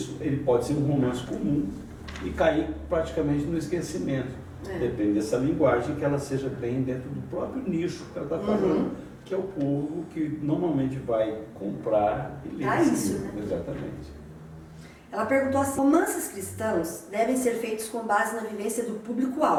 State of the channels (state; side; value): identical; both; correlation 1.00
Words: ele pode ser um romance comum e cair praticamente no esquecimento. Depende dessa linguagem, que ela seja bem dentro do próprio nicho que ela está falando, que é o povo que normalmente vai comprar e ler isso, né? Exatamente. Ela perguntou assim: romances cristãos devem ser feitos com base na vivência do